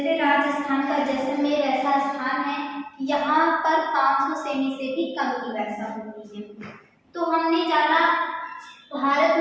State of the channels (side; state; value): both; identical; correlation 1.00